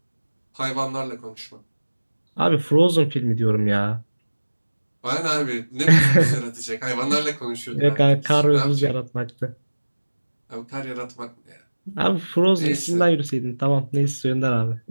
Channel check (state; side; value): inverted; both; correlation -1.00